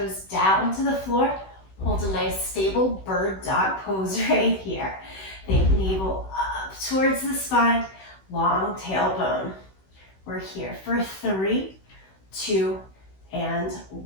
down to the floor. Hold a nice stable bird dog pose right here. Think navel up towards the spine, long tailbone. We're here for 3, 2, and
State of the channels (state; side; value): late; right; 16 ms